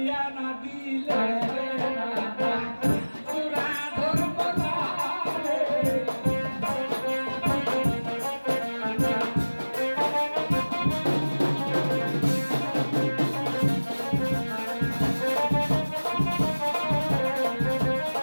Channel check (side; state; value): both; inverted; correlation -1.00